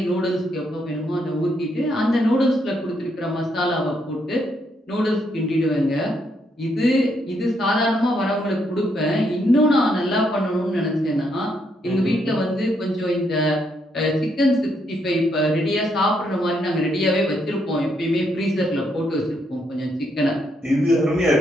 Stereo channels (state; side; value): normal; both; correlation 0.75